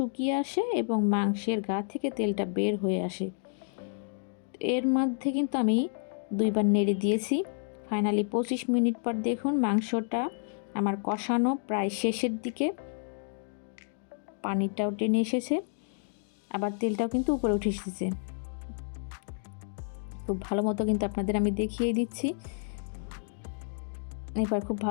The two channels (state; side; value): silent; right; digital silence